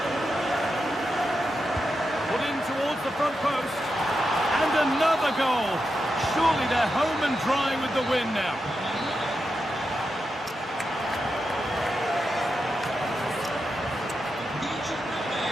Put in towards the front post. And another goal. Surely they're home and dry with the win now.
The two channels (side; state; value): both; normal; correlation 0.87